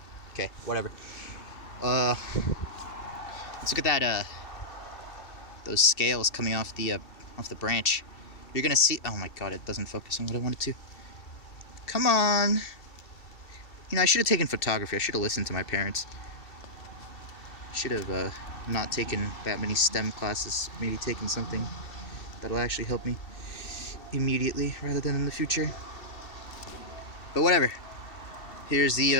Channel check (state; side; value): late; right; 2.7 ms